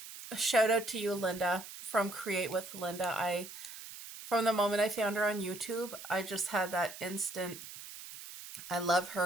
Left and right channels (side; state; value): right; noise; hiss, 13 dB below the sound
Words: a shout out to you, Linda, from Create with Linda. From the moment I found her on YouTube, I just had that instant, I love